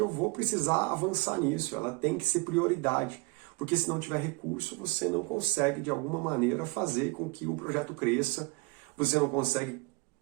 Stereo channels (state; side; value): quieter; left; 25.7 dB